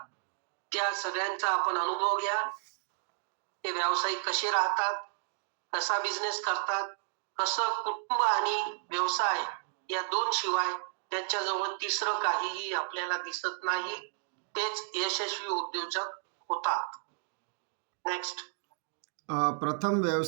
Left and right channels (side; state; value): left; silent; digital silence